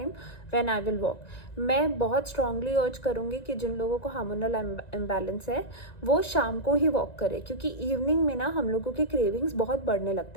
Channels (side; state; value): right; late; 1.9 ms